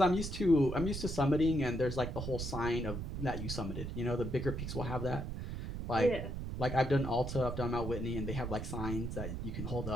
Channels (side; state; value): right; noise; rumble, 5 dB below the sound